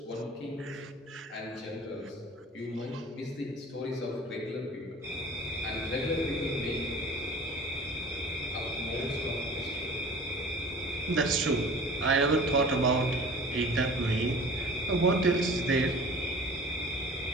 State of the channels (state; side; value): normal; both; correlation 0.42